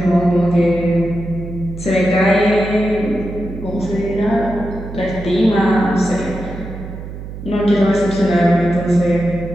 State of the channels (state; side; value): noise; right; hum, 11 dB below the sound